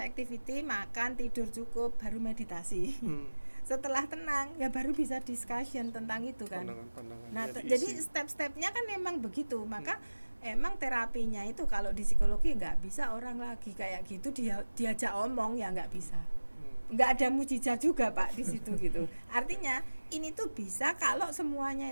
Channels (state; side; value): inverted; both; correlation -1.00